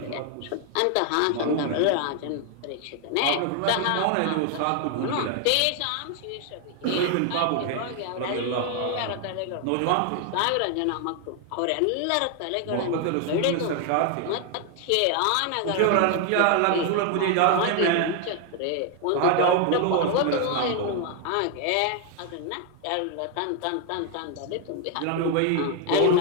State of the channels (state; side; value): different; both; correlation 0.00